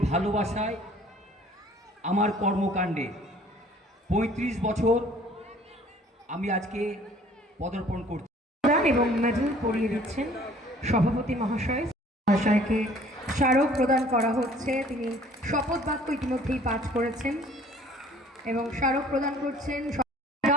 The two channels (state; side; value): normal; both; correlation 0.54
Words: ভালোবাসায়, আমার কর্মকাণ্ডে 35 বছর আমি আজকে পদার্পণ করছি। এবং মেডেল পরিয়ে দিচ্ছেন সভাপতি মহাশয়কে স্মারক প্রদান করা হচ্ছে। তিনি শপথ বাক্য ইতিমধ্যেই পাঠ করেছেন এবং স্মারক প্রদান করছেন